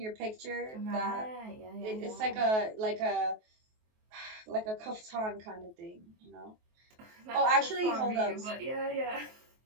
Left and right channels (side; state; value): left; late; 23 ms